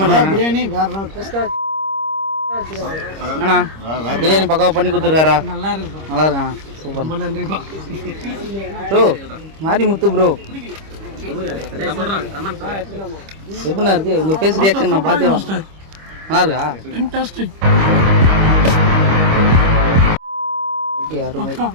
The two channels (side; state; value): left; late; 25 ms